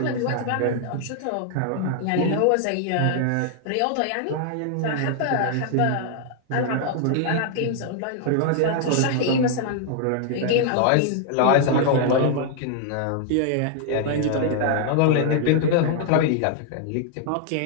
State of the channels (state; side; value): different; both; correlation 0.00